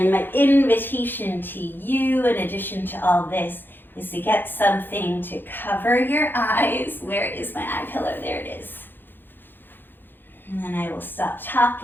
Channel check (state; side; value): late; right; 0.097 ms